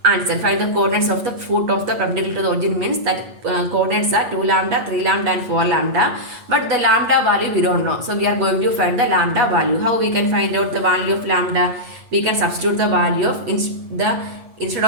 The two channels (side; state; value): left; late; 8.2 ms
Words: answer. Find the coordinates of the foot of the perpendicular to the origin means that coordinates are 2 lambda, 3 lambda and 4 lambda. But the lambda value we don't know. So we are going to find the lambda value. How we can find out the value of lambda? We can substitute the value of instead